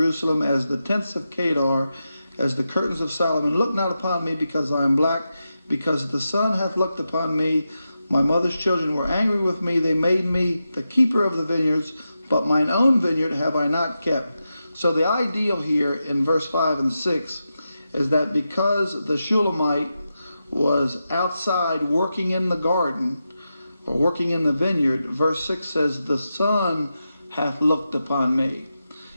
as the tents of Kedar, as the curtains of Solomon. Look not upon me because I am black, because the sun hath looked upon me. My mother's children were angry with me. They made me the keeper of the vineyards, but mine own vineyard have I not kept. So the ideal here in verse 5 and 6 is that because the Shulamite was outside working in the garden, or working in the vineyard, verse 6 says, the sun hath looked upon me.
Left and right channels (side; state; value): both; inverted; correlation -0.89